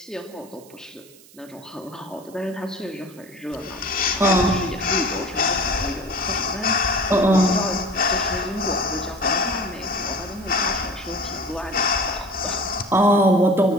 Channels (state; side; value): noise; right; hiss, 24 dB below the sound